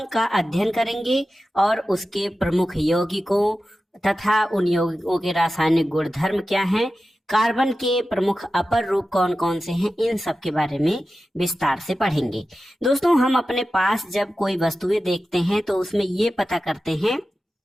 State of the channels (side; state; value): both; normal; correlation 0.94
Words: का अध्ययन करेंगे और उसके प्रमुख यौगिकों तथा उन यौगिकों के रासायनिक गुणधर्म क्या हैं, कार्बन के प्रमुख अपर रूप कौन कौन से हैं, इन सब के बारे में विस्तार से पढ़ेंगे। दोस्तों, हम अपने पास जब कोई वस्तुएं देखते हैं तो उसमें ये पता करते हैं